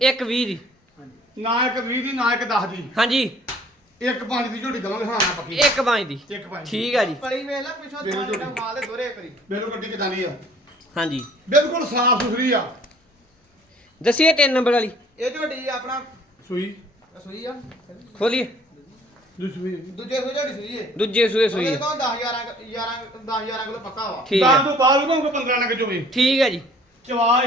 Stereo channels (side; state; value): both; normal; correlation 0.56